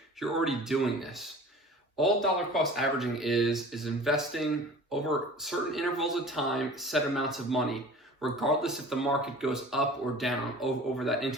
you're already doing this. All dollar cost averaging is investing over certain intervals of time, set amounts of money, regardless if the market goes up or down over that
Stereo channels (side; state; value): both; normal; correlation 0.42